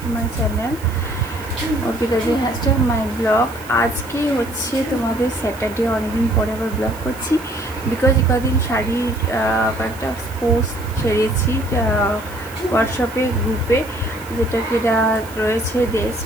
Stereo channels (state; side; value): noise; right; hiss, 19 dB below the sound